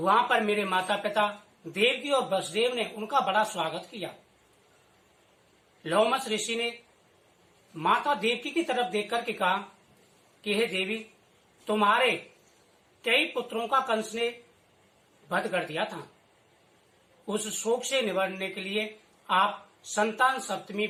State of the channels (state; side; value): identical; both; correlation 1.00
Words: पर मेरे माता पिता देवकी और वसुदेव ने उनका बड़ा स्वागत किया। लोमस ऋषि ने माता देवकी की तरफ देख करके कहा कि हे देवी, तुम्हारे कई पुत्रों का कंस ने वध कर दिया था। उस शोक से निवारने के लिए आप संतान सप्तमी